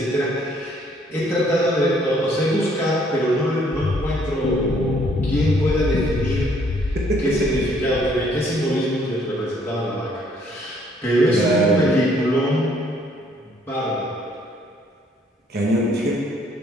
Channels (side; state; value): both; normal; correlation 0.64